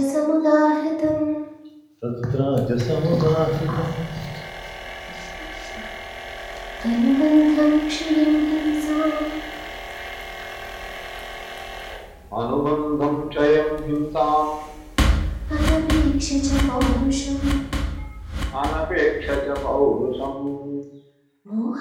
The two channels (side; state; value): both; identical; correlation 1.00